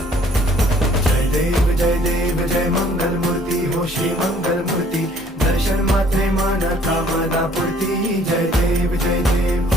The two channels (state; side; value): normal; both; correlation 0.58